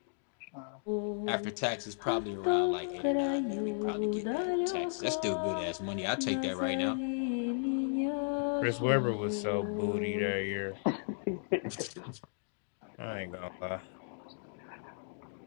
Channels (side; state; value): right; silent; digital silence